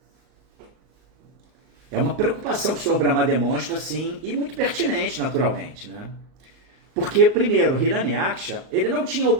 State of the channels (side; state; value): left; late; 38 ms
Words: uma preocupação que o Senhor Brahma demonstra, assim, e muito pertinente, naturalmente, né? Porque, primeiro, Hiranyaksha, ele não tinha